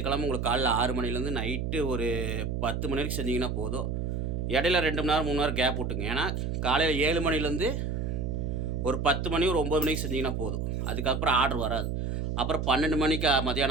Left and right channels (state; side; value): noise; right; hum, 2 dB below the sound